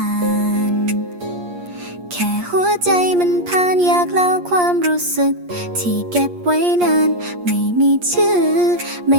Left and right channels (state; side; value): late; left; 8.4 ms